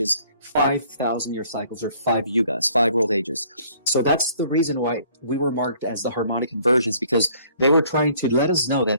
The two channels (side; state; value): both; inverted; correlation -0.60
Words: 5,000-year cycles, or 5 yugas, 5 world ages. So that's the reason why we were marked as the harmonic convergence, because they were trying to let us know